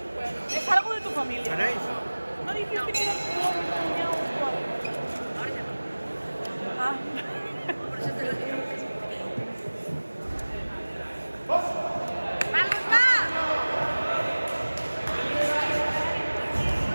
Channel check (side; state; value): both; inverted; correlation -1.00